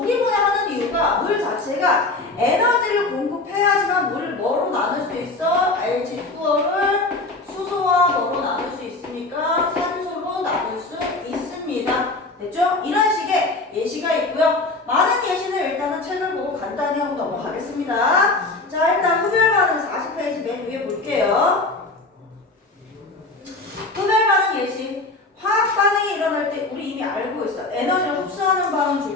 분해하는 이유가 물 자체가 에너지를 공급해야지만 물을 뭐로 나눌 수 있어? H2O를 수소와 뭐로 나눌 수 있습니까? 산소로 나눌 수 있습니다. 됐죠? 이런 식의 예시가 있고요. 많은 예시는 일단은 책을 보고 간단히 하고 넘어가겠습니다. 자, 일단 흡열 반응 40페이지 맨 위에 볼게요. 흡열 반응 예시. 화학 반응이 일어날 때 우리 이미 알고 있어. 에너지를 흡수하는 반응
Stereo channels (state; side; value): quieter; right; 3.2 dB